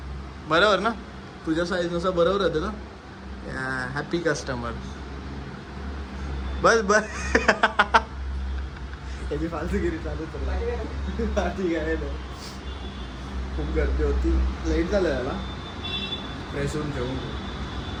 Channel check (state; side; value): identical; both; correlation 1.00